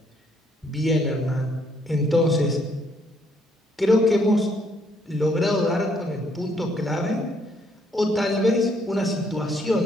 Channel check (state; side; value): normal; both; correlation 0.69